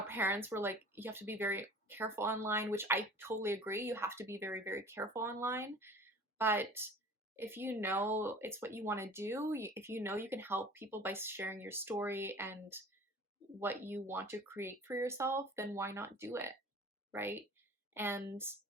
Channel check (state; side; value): normal; both; correlation 0.44